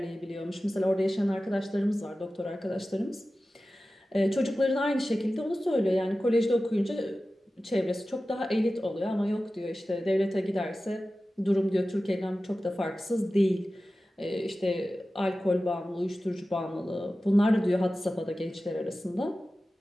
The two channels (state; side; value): normal; both; correlation 0.95